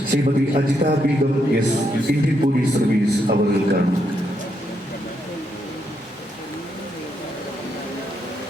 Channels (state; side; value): normal; both; correlation 0.79